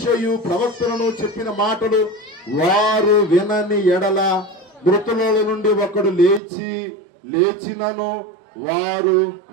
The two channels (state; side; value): drops out; left; at 6.4 s